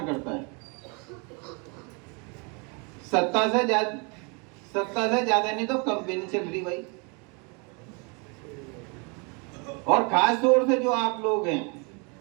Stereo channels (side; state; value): left; quieter; 32.8 dB